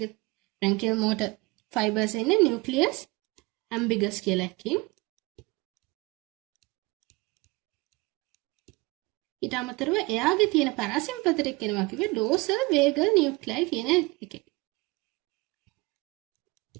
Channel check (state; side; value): quieter; left; 24.4 dB